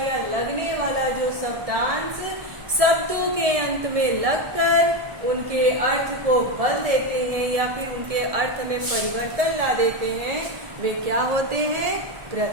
लगने वाला जो शब्दांश शब्दों के अंत में लगकर उनके अर्थ को बदल देते हैं या फिर उनके अर्थ में परिवर्तन ला देते हैं, वे क्या होते हैं,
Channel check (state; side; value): late; left; 1.7 ms